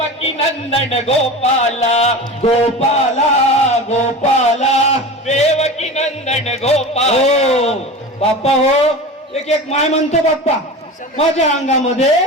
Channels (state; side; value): normal; both; correlation 0.31